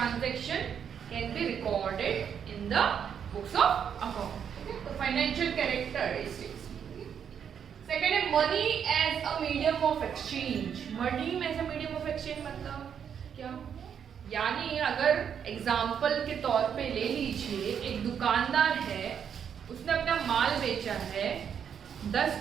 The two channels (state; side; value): quieter; left; 7.9 dB